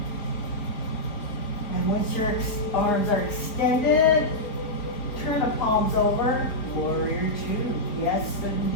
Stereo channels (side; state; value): right; late; 4.4 ms